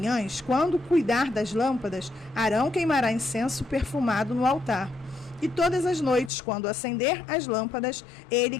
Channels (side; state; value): right; drops out; at 6.3 s